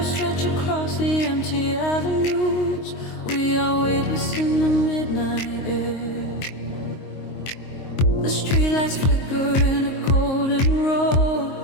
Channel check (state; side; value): late; right; 22 ms